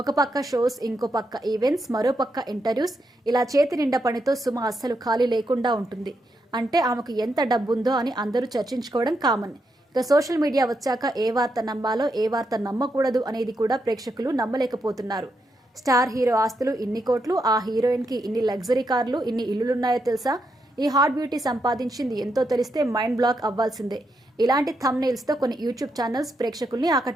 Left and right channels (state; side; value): normal; both; correlation 0.82